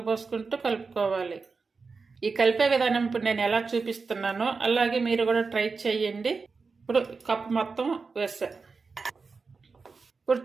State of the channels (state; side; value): quieter; left; 4.6 dB